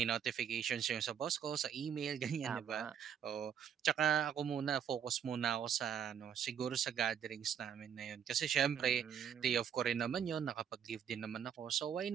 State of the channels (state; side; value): quieter; left; 8.4 dB